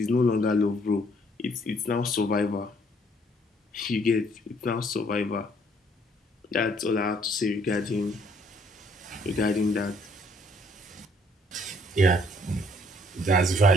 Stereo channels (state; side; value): normal; both; correlation 0.64